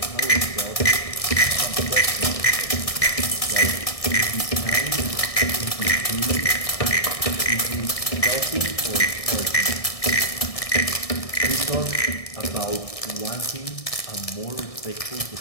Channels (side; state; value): right; late; 1.6 ms